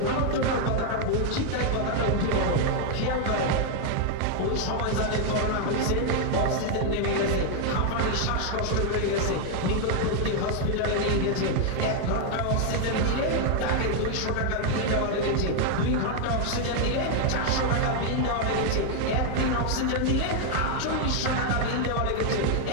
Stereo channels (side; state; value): both; different; correlation 0.00